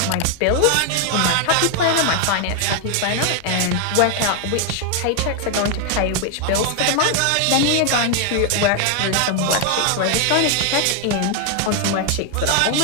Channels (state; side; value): different; both; correlation 0.00